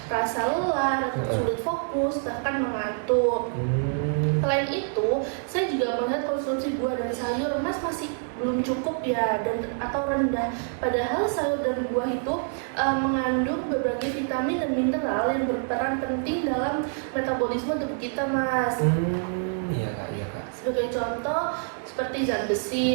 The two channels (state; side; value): silent; left; 61 dB below the other